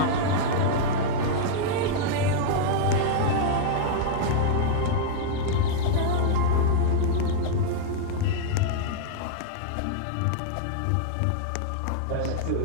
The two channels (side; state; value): both; different; correlation -0.01